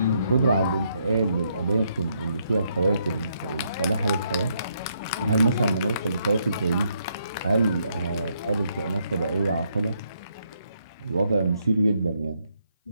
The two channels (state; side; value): inverted; both; correlation -0.75